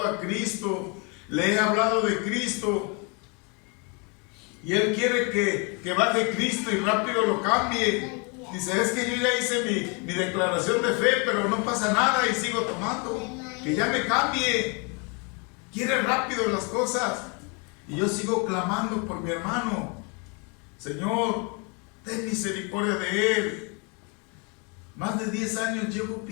a Cristo, le he hablado de Cristo y él quiere que baje Cristo y rápido lo cambie. Dice, es que yo ya hice mi declaración de fe, pero no pasa nada y sigo tomando, que ya me cambie. Quiere rápido las cosas. Y yo sigo clamando por mi hermano. Señor, ten misericordia de él. Más de 10 años llevo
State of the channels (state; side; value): quieter; right; 33.2 dB